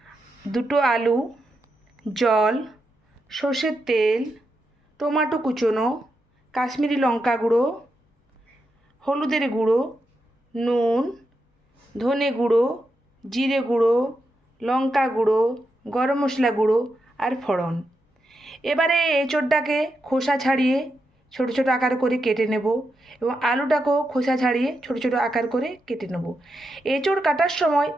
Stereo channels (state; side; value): normal; both; correlation 0.85